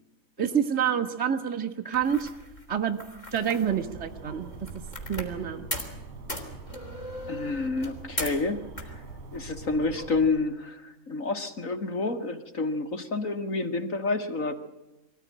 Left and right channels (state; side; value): late; right; 3.7 ms